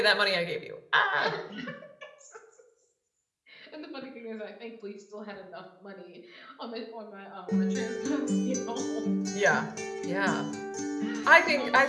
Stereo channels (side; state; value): both; identical; correlation 1.00